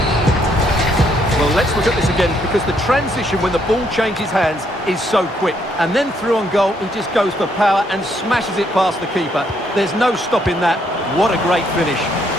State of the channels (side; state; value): both; normal; correlation 0.72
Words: Well, let's look at this again, because the transition when the ball changes hands is so quick. And then through on goal, he just goes for power and smashes it past the keeper. There's no stopping that. What a great finish.